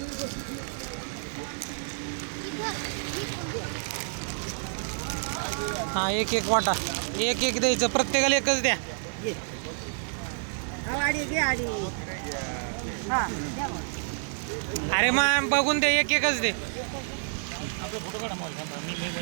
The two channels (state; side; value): silent; left; 59 dB below the other